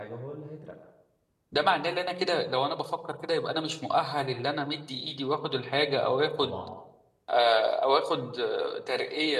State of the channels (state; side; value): identical; both; correlation 1.00